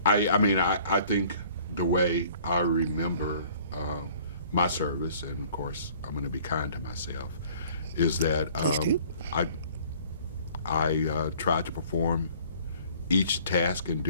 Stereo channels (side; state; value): both; inverted; correlation -0.54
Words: I think the way I remember my service, and of course I'm going to be kind to myself, is that Please do. I tried to perform each task and